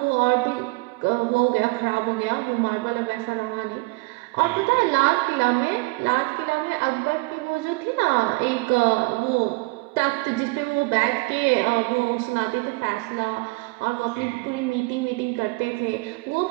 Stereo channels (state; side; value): quieter; left; 25.9 dB